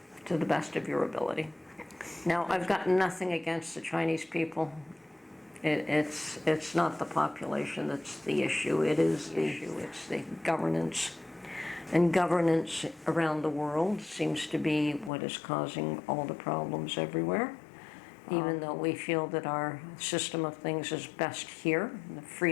to the best of your ability. Now, I've got nothing against the Chinese people. It's not the population that's the issue. It is the issue. It's the governance. And governance around the world seems to be what is causing all the problems everywhere. Even though we feel that our system of things is best here, the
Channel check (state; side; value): drops out; right; at 15.1 s